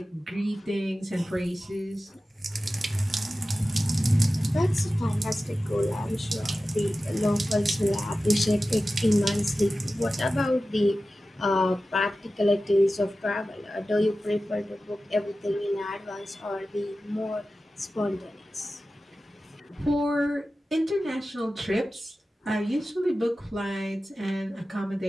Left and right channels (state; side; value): normal; both; correlation 0.94